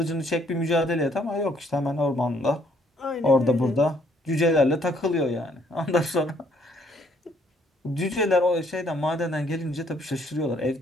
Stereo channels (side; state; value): both; normal; correlation 0.66